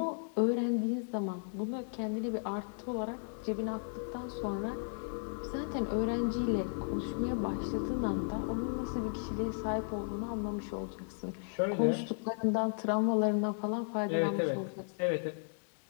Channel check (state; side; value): silent; right; digital silence